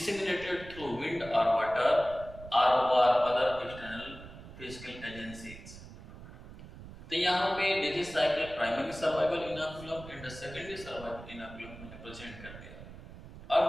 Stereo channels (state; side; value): noise; right; rumble, 15 dB below the sound